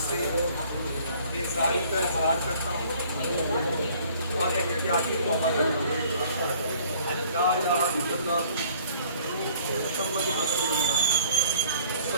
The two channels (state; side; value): inverted; both; correlation -0.56